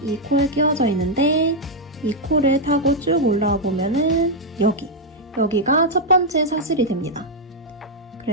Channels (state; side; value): normal; both; correlation -0.02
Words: 이 코에 끼워져 있는데 이 코를 타고 쭉 올라와 보면은 여기가 첫 번째 사슬이 됩니다.